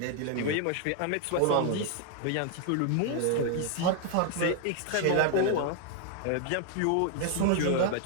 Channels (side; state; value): both; different; correlation 0.00